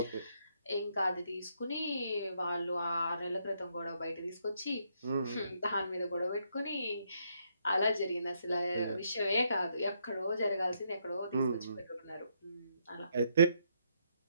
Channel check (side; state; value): both; inverted; correlation -0.75